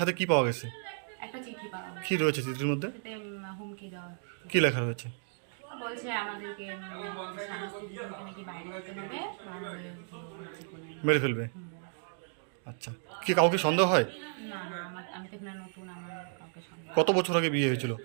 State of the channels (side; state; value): left; silent; 56 dB below the other